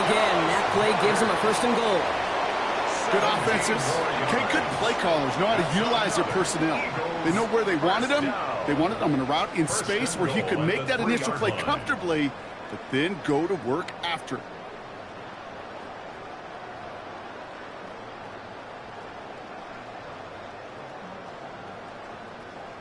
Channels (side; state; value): both; identical; correlation 1.00